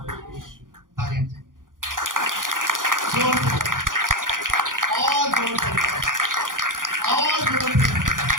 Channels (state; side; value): late; left; 0.89 ms